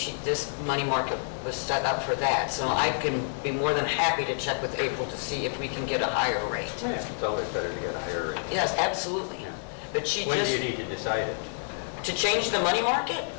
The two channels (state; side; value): silent; right; 59 dB below the other